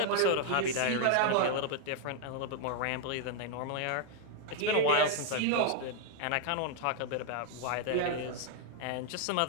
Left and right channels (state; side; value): different; both; correlation 0.00